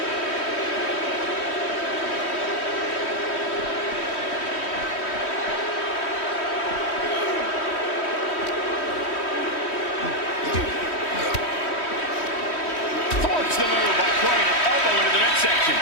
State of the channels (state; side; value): late; right; 3.1 ms